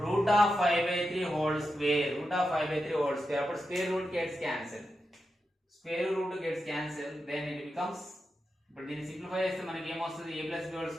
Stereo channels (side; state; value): both; normal; correlation 0.89